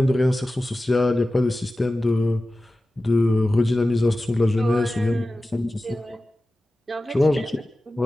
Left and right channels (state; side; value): normal; both; correlation 0.95